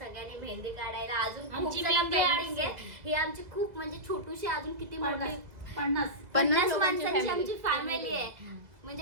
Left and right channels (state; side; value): late; left; 2.0 ms